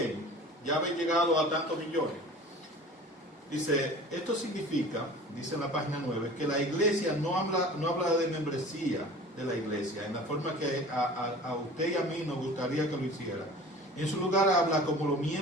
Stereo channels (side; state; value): both; normal; correlation 0.42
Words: ya habéis llegado a tantos millones. Dice, esto significa, dice en la página 9, que la iglesia no habla de membresía de la iglesia, en la forma que a usted y a mí nos gustaría que lo hiciera. En su lugar habla como los